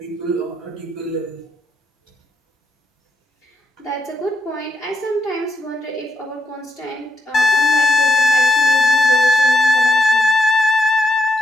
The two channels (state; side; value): normal; both; correlation 0.81